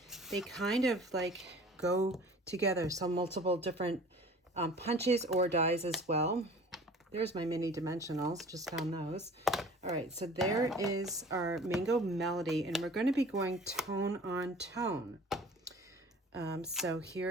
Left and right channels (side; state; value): both; normal; correlation 0.46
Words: they kind of like go together, so multiple different punches or dies as well. There's my mini dimensionals, just found those. All right, so there is our Mango Melody, and we're going to be going tone on tone. So